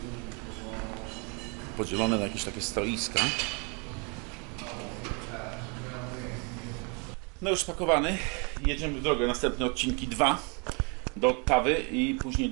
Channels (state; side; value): quieter; left; 33.6 dB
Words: podzielone na jakieś takie stoiska. No już spakowany, jedziemy w drogę, następne odcinki 2 do Ottawy i później